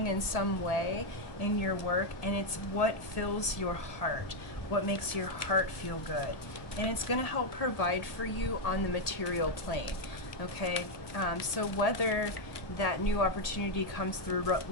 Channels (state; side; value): late; right; 1.8 ms